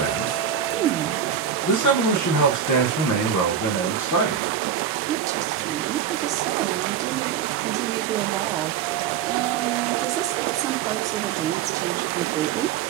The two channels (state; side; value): quieter; left; 8.1 dB